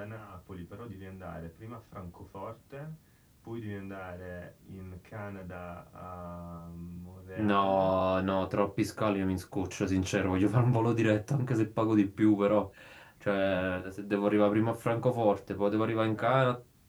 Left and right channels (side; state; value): both; identical; correlation 1.00